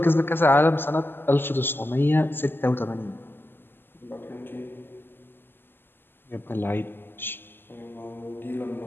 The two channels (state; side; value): late; right; 0.10 ms